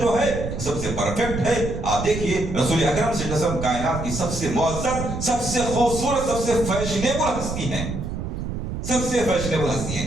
ہے سب سے پرفیکٹ ہے۔ آپ دیکھیے رسول اکرم صلی اللہ علیہ وسلم کائنات کی سب سے معزز، سب سے خوبصورت، سب سے فیشنیبل ہستی ہیں، سب سے فیشنیبل ہستی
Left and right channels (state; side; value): noise; right; rumble, 5 dB below the sound